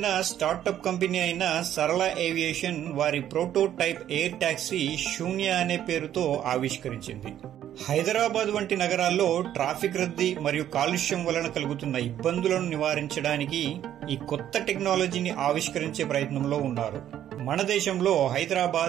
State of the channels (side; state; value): left; quieter; 11.1 dB